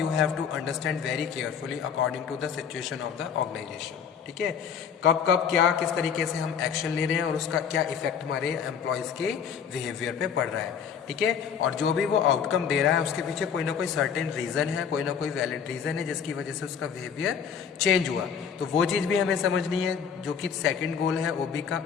have to understand very carefully according to the situation of the organisation, ठीक है। कब क्या किस तरीके से हम एक्शन ले रहे हैं और उसका क्या इफेक्ट हमारे एम्प्लॉयज के बिहेवियर पे पड़ रहा है, ठीक है। और जो भी वो आउटकम दे रहा है उसके पीछे कोई ना कोई सर्टेन रीजन है, कोई ना कोई वैलिड रीजन है जिसकी वजह से उसका बिहेवियर चेंज हुआ। तो वो चीज़ भी हमें समझनी है, जो कि सेकेंड गोल है OB का,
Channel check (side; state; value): right; quieter; 7.3 dB